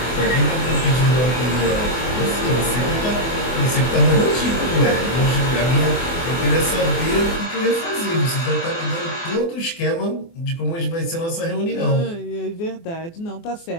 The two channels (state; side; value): late; right; 24 ms